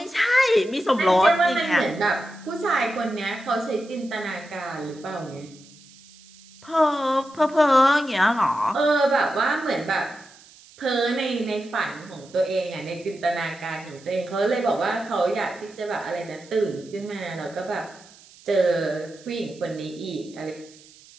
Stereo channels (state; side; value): noise; right; hiss, 24 dB below the sound